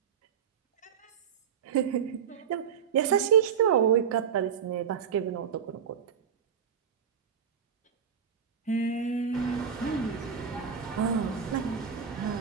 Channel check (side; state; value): left; quieter; 7.5 dB